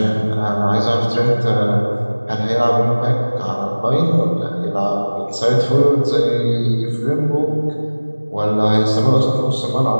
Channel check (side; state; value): both; inverted; correlation -1.00